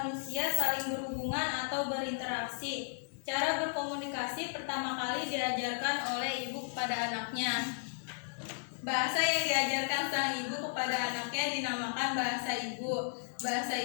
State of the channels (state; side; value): silent; right; digital silence